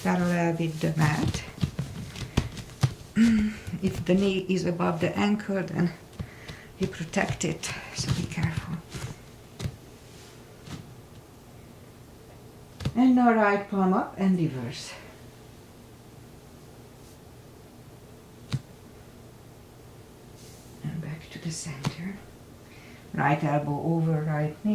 with the mat. If the knee is above the ankle, then you protect it, so be careful. And now right palm up and reverse. And back to the center. Right elbow over right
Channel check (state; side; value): identical; both; correlation 1.00